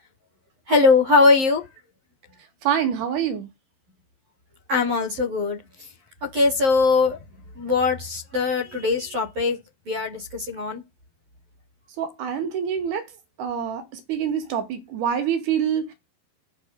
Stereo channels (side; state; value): left; late; 11 ms